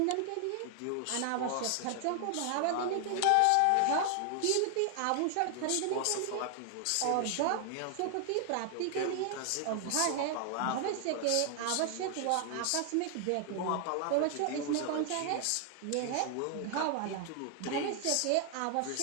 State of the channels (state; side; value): different; both; correlation 0.00